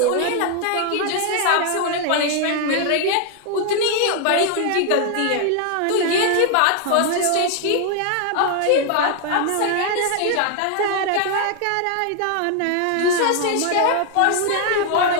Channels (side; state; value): both; different; correlation 0.00